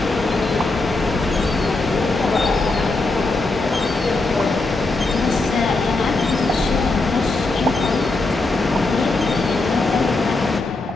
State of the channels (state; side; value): quieter; right; 3.3 dB